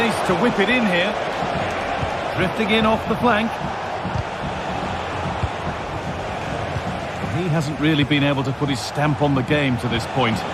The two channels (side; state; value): both; identical; correlation 1.00